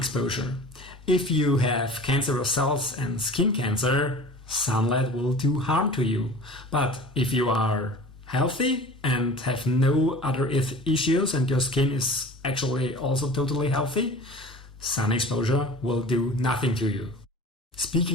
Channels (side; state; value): both; normal; correlation 0.40